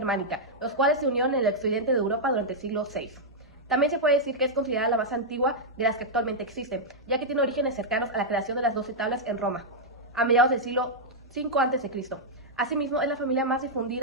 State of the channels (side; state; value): both; normal; correlation -0.06